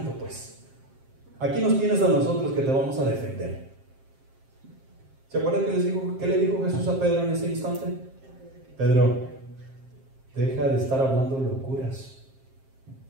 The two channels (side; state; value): left; late; 7.5 ms